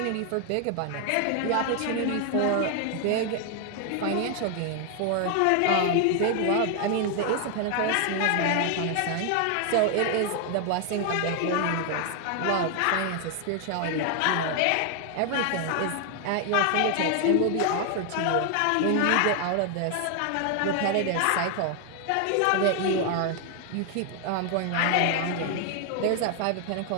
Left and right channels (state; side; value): different; both; correlation 0.00